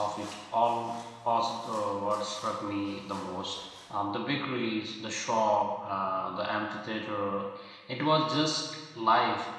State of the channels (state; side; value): identical; both; correlation 1.00